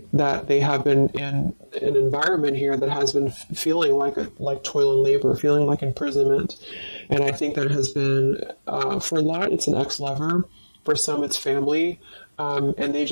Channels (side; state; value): both; inverted; correlation -1.00